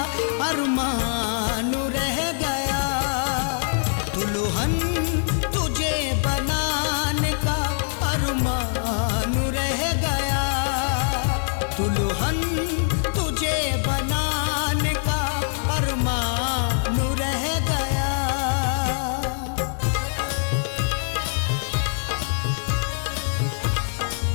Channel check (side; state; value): right; silent; 63 dB below the other